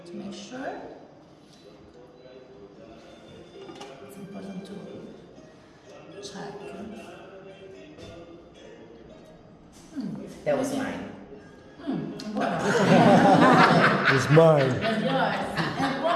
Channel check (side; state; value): both; identical; correlation 1.00